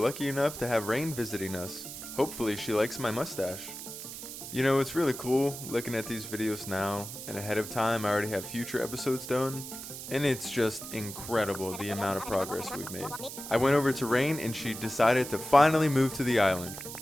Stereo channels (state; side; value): noise; right; hiss, 10 dB below the sound